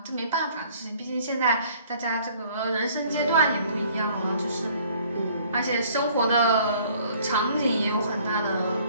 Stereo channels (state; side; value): inverted; both; correlation -0.56